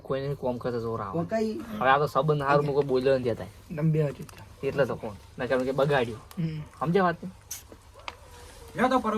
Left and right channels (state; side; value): identical; both; correlation 1.00